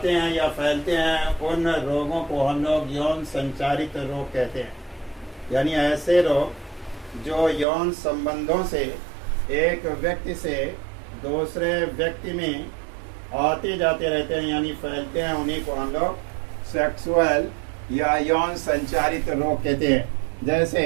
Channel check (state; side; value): drops out; left; at 7.7 s